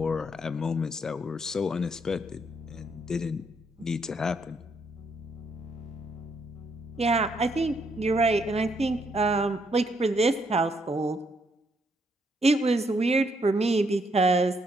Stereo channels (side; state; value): both; normal; correlation 0.74